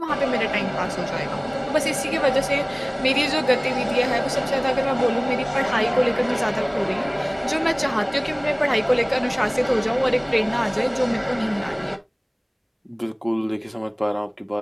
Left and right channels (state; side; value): identical; both; correlation 1.00